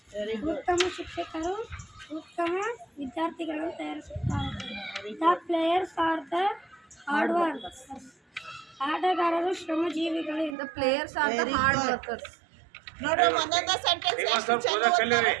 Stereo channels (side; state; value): left; drops out; at 10.6 s